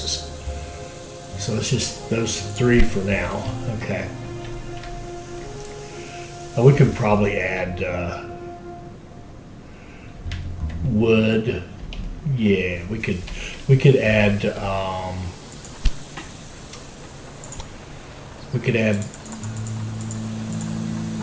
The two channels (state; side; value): identical; both; correlation 1.00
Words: So it's just those 3 for now. Okay. We could probably add wood. Yeah, we could add